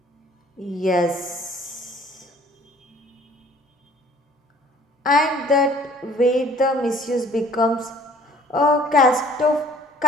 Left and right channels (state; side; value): normal; both; correlation 0.55